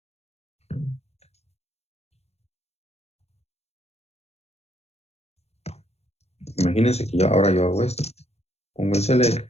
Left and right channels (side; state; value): right; late; 0.31 ms